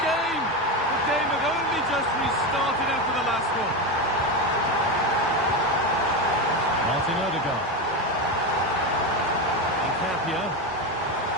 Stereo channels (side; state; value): both; normal; correlation 0.15